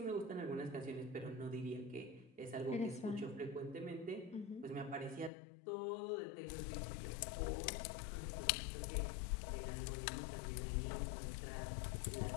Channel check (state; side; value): drops out; right; at 5.3 s